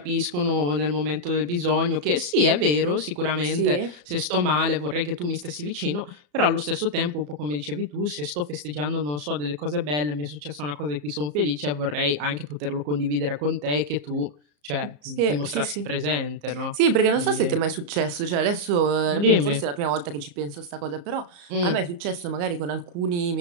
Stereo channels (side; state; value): left; late; 34 ms